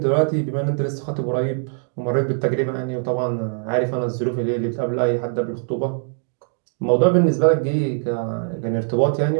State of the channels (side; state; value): left; silent; 64 dB below the other